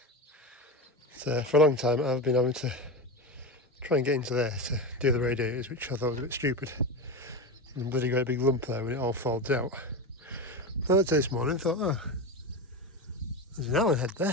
So for a long time I've been having to try and get into there to do the radiators, which I thought was a bit stupid. And bloody great big lump there when it all folds out. I looked at this morning and thought, oh, there's an Allen head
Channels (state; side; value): normal; both; correlation 0.20